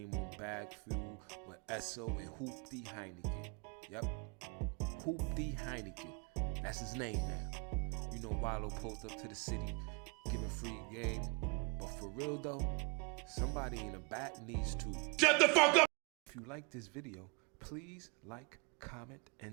on bagfuel with Esso and Hooptie Heineken. Yep, Hooptie Heineken. That's his name now. You know Walo pulled up to the city, giving free game. But for real though, somebody in the back needs to shut the fuck up! If you like this video, please like, comment,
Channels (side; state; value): left; quieter; 32.6 dB